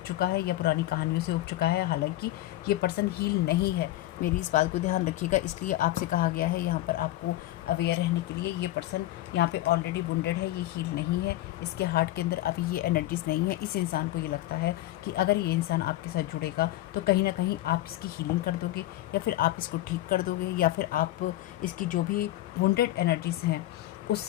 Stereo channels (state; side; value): quieter; right; 15.7 dB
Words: चुका है या पुरानी कहानियों से ऊब चुका है। हालांकि ये पर्सन हील नहीं है, मेरी इस बात को ध्यान रखिएगा, इसलिए आपसे कहा गया है यहाँ पर आपको अवेयर रहने के लिए। ये पर्सन यहाँ पे ऑलरेडी वुंडेड है, ये हील नहीं है, इसके हार्ट के अंदर अभी ये एनर्जीज नहीं है। इस इंसान को ये लगता है कि अगर ये इंसान आपके साथ जुड़ेगा तो कहीं ना कहीं आप इसकी हीलिंग कर दोगे, या फिर आप इसको ठीक कर दोगे, या फिर आप इसकी जो भी वुंडेड एनर्जीज हैं